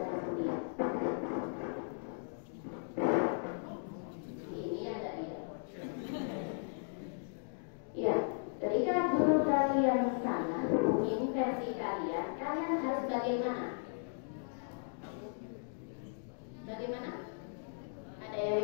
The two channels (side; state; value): right; silent; digital silence